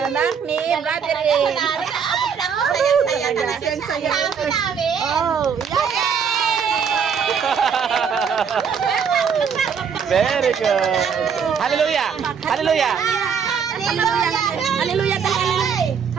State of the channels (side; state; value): left; quieter; 6.8 dB